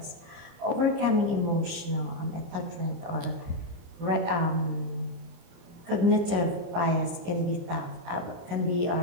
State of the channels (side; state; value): left; late; 29 ms